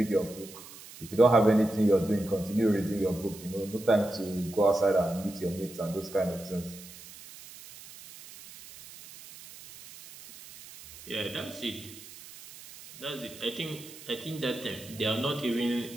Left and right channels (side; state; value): right; noise; hiss, 17 dB below the sound